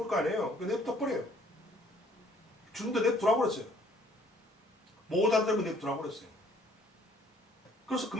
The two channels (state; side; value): normal; both; correlation 0.61